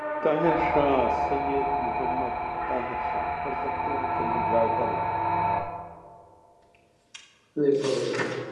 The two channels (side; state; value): both; identical; correlation 1.00